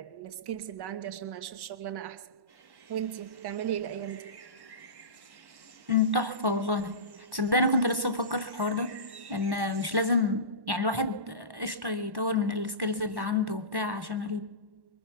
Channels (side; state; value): left; late; 1.1 ms